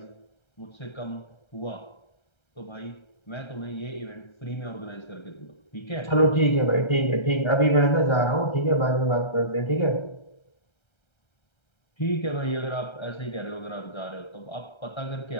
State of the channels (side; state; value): right; late; 1.3 ms